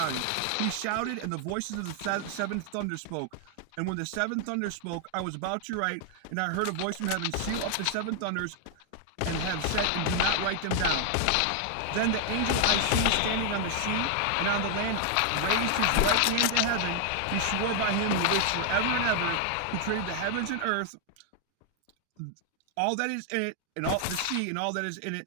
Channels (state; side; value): different; both; correlation 0.00